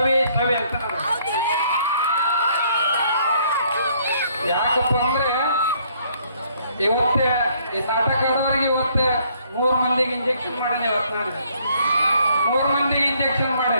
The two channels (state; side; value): inverted; both; correlation -0.65